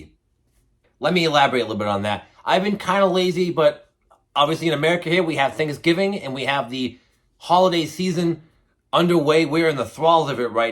Let me elaborate a little bit on that. I've been kind of lazy, but obviously in America here, we have Thanksgiving and we have the holiday season underway. We're in the thralls of it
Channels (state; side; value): identical; both; correlation 1.00